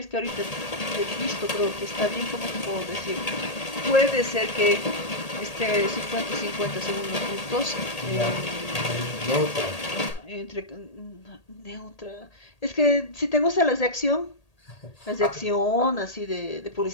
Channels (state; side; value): late; right; 1.8 ms